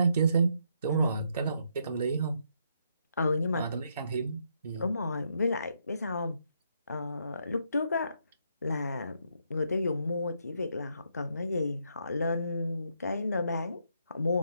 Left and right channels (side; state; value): both; inverted; correlation -0.76